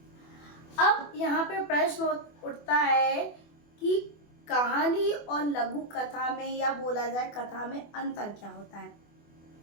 अब यहाँ पे प्रश्न उठता है कि कहानी और लघु कथा में, या बोला जाए कथा में, अंतर क्या होता है?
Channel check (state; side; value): late; right; 24 ms